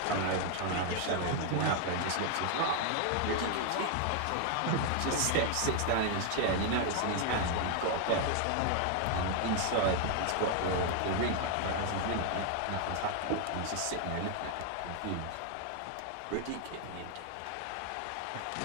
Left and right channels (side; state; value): both; different; correlation 0.00